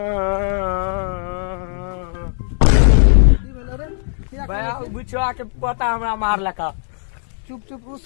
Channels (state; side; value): silent; right; 67 dB below the other